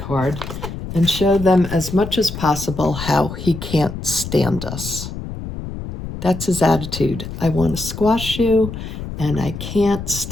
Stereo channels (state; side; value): noise; left; rumble, 8 dB below the sound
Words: and show them as much as possible how he can't stand us. That's his attitude. I want to squash you, and I can't